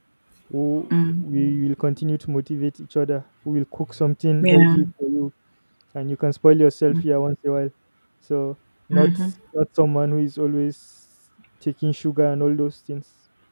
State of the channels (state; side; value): inverted; both; correlation -1.00